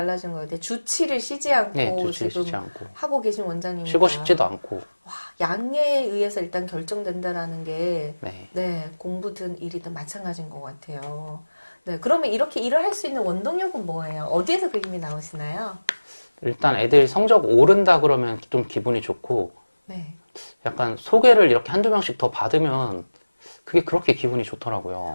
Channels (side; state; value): both; inverted; correlation -1.00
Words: 것 같아. 주치를 쉬지 않고 예, 주치를 지금 쉬지 않고 하고 계신 원장님이니까 쉬고 싶지도 않고 와, 양에 의해서 일단 결정된다라는 게 네. 네, 공부든 일이든 마찬가지인 것 같아요. 네, 그러면 이렇게 일을 할 수 있는 원동력은 뭐예요? 어디에서 그 힘이 나오시나요? 일단 애들 성적 오른다 그러면 좀 기분이 좋고 네. 약간 소개를 이렇게 한두 명씩 더 받으면 그게 그렇게 기분이